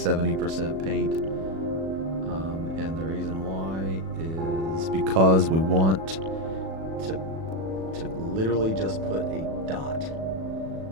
paint. And the reason why is because we want to literally just put a dot.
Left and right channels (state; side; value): late; left; 37 ms